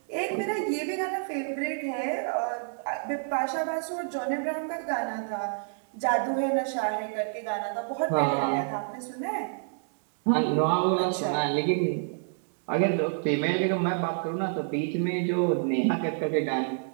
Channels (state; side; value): silent; left; digital silence